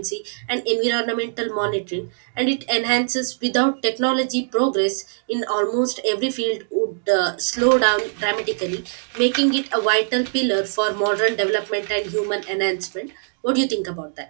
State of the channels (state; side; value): silent; left; digital silence